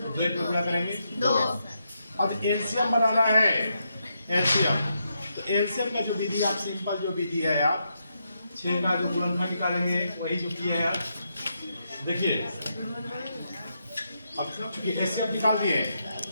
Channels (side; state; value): both; inverted; correlation -0.81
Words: वेट को क्या करेंगे? 2। अब एलसीएम बनाना है, एलसीएम। तो एलसीएम का जो विधि, आप सिंपल जो विधि है, आप 6 का जो गुणनखंड निकालेंगे वही जो किया है यार। देखिए, अब एलसीएम निकाल दिए।